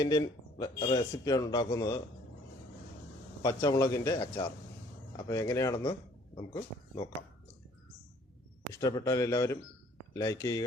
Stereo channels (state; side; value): normal; both; correlation 0.58